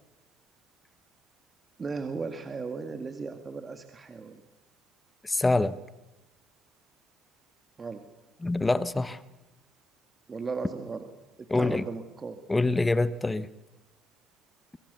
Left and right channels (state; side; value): normal; both; correlation 0.94